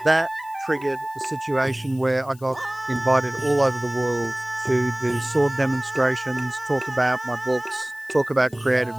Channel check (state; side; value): noise; left; hiss, 25 dB below the sound